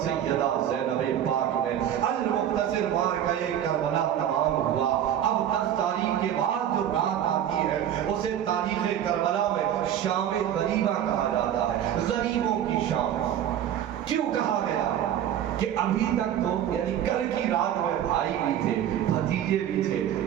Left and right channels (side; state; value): left; quieter; 10.5 dB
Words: سیدہ زینب پاک نے، المختصر مارکہ کربلا تمام ہوا۔ اب 10 تاریخ کے بعد جو رات آتی ہے اسے تاریخ کربلا میں شام غریبہ کہا جاتا ہے، غریبوں کی شام۔ کیوں کہا گیا؟ کہ ابھی تک تو یعنی کل کی رات میں بھائی بھی تھے، بھتیجے بھی تھے،